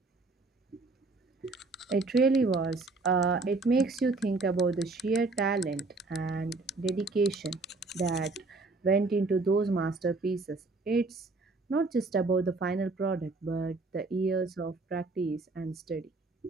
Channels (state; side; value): quieter; left; 3.5 dB